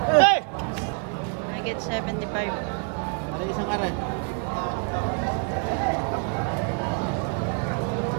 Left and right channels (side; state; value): left; quieter; 37.3 dB